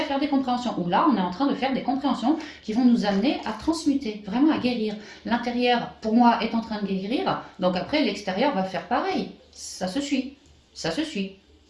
faire des compréhensions. Ou là, on est en train de faire des compréhensions qui vont nous amener à transmuter, vraiment à guérir. L'intérieur, pour moi, est en train de guérir, donc après, l'extérieur va faire pareil. Ça se suit. Ça se suit.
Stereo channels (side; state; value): both; identical; correlation 1.00